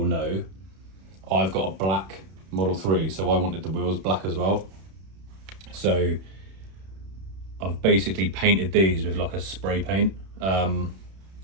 know. I've got a black Model 3, so I wanted the wheels black as well. So I've basically painted these with like a spray paint.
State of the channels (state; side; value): late; left; 31 ms